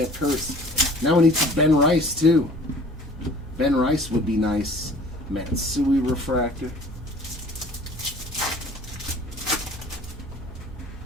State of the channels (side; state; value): both; normal; correlation 0.49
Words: Kurtz. Now we need some Ben Rice, too. Ben Rice would be nice. Matsui refractor.